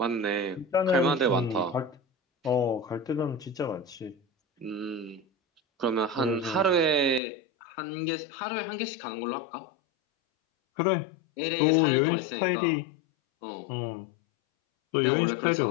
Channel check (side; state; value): right; drops out; at 7.2 s